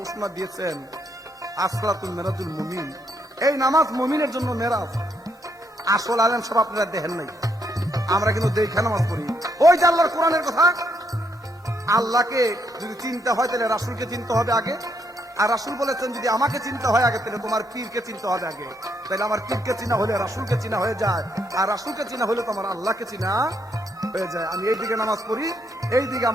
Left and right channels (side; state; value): both; normal; correlation 0.75